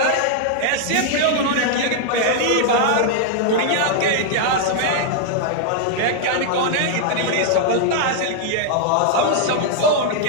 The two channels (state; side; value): different; both; correlation -0.01